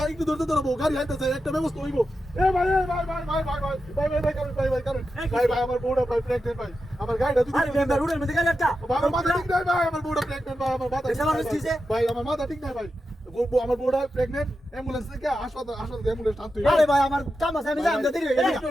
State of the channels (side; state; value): both; normal; correlation 0.89